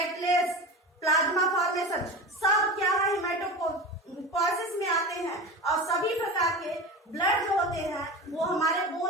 plasma formation, सब क्या है? हिमेटोपोइसिस में आते हैं। और सभी प्रकार के ब्लड जो होते हैं वो हमारे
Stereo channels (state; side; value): normal; both; correlation 0.28